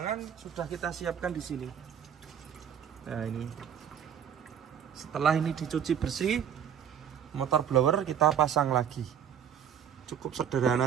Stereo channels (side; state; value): left; quieter; 8.7 dB